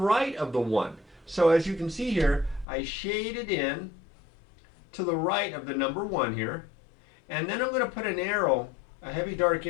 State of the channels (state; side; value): drops out; right; at 2.7 s